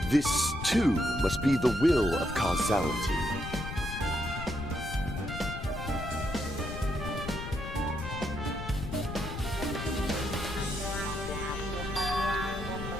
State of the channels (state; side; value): noise; left; rumble, 7 dB below the sound